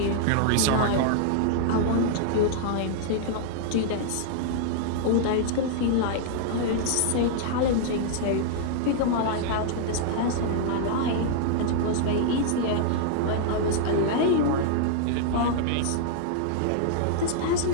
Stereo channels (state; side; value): different; both; correlation -0.01